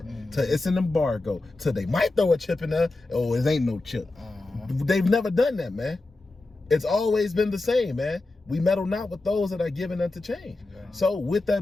to it's an embargo to they might throw a chip in there, oh, it ain't no chip. They've never done that, man. It's always been the same, man. We meddle not with those that are given unto change. So with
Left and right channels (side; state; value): right; quieter; 3.1 dB